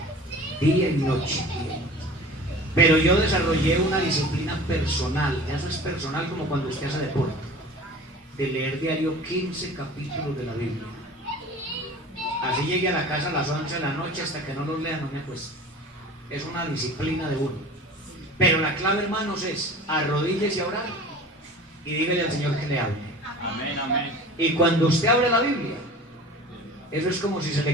día y noche. Pero yo desarrollé una disciplina personal. Eso es personal, como cuando usted hace deporte, de leer diario 15 capítulos de la Biblia. Así llegué a la casa a las 11 de la noche, hasta que no los lea no me acuesto. Es una disciplina de uno. Pero la clave, hermanos, es arrodíllese a orar y dígale al Señor que le hable. Amén, amén. Y cuando usted abre la Biblia, eso es como si se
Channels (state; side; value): normal; both; correlation 0.40